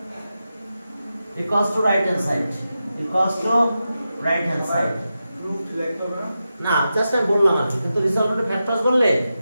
equals to right hand side, equals to right hand side. Proof like over. না জাস্ট আমি বললাম আর কি, কিন্তু রিজলভেন্ট ফ্যাক্টরস বললে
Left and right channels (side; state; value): both; inverted; correlation -0.90